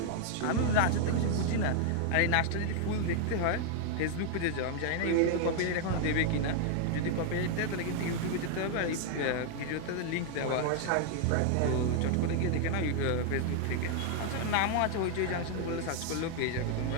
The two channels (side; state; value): both; different; correlation 0.00